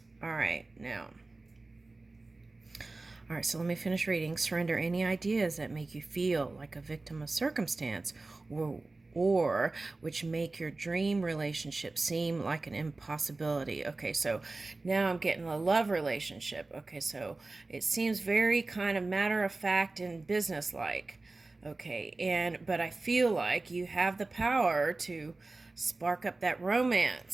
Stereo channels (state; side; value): quieter; left; 3.3 dB